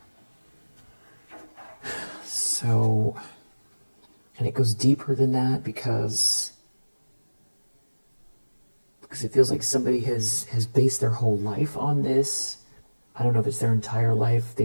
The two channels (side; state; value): both; inverted; correlation -1.00